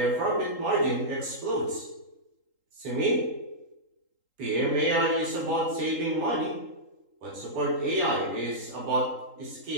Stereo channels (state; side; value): late; left; 3.8 ms